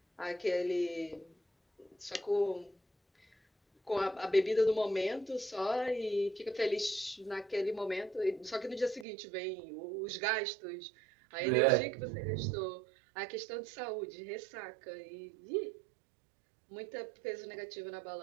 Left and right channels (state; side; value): drops out; left; at 9.1 s